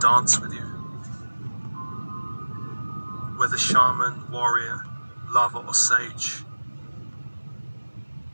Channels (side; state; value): both; inverted; correlation -1.00